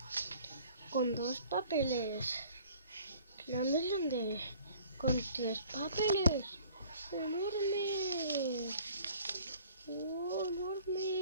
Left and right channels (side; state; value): both; inverted; correlation -0.52